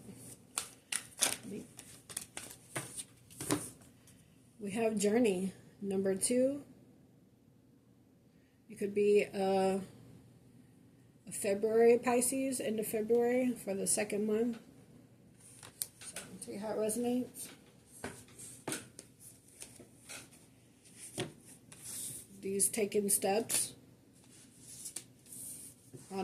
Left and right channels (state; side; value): identical; both; correlation 1.00